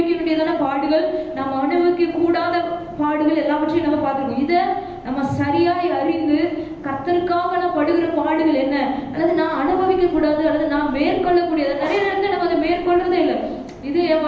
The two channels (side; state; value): both; identical; correlation 1.00